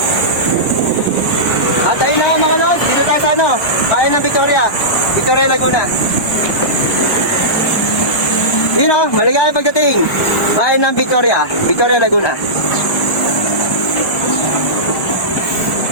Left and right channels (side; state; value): right; late; 1.2 ms